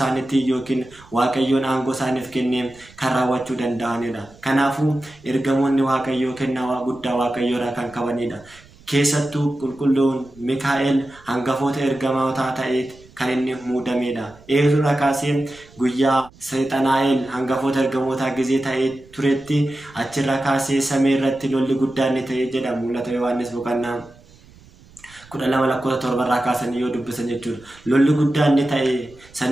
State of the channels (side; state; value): right; noise; rumble, 25 dB below the sound